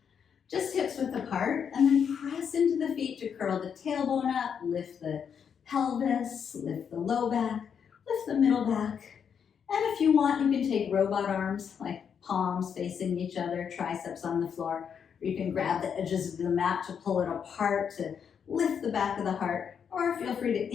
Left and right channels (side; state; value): right; quieter; 7.4 dB